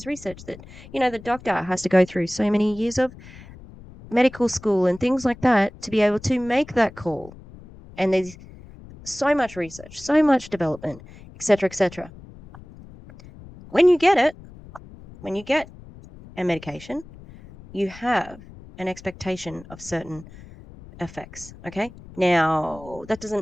research that, the doctor has to go through so many years of medical school and things like that to be able to make that call. And there's so much research, so much development, etc., etc. When you get it, when you get a medication, you have an expectation of certain effects. Okay. Now, that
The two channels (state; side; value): noise; left; rumble, 19 dB below the sound